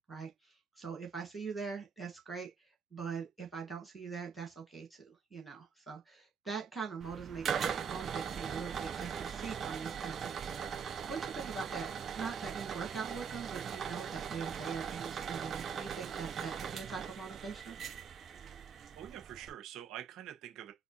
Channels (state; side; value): quieter; left; 6.3 dB